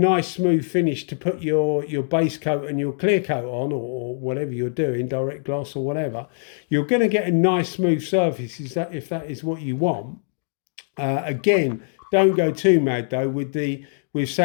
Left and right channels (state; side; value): silent; right; digital silence